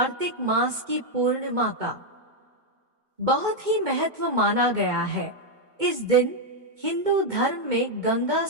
मास की पूर्णिमा का बहुत ही महत्व माना गया है। इस दिन हिंदू धर्म में गंगा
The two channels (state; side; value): late; left; 2.2 ms